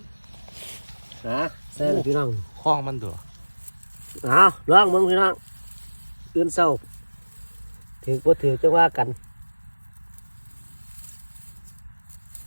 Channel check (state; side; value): inverted; both; correlation -1.00